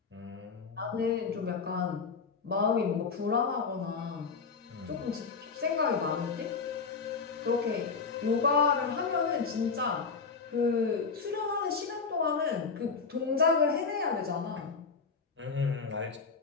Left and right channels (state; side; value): quieter; right; 5.1 dB